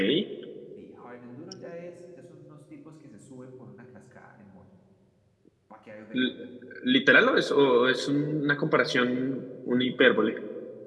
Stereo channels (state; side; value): identical; both; correlation 1.00